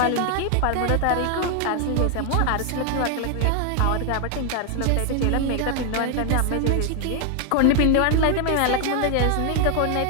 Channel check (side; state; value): both; different; correlation 0.00